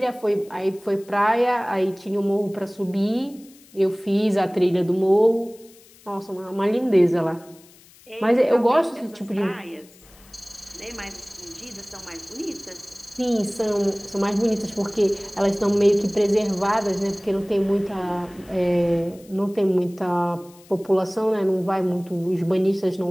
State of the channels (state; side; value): noise; left; hiss, 26 dB below the sound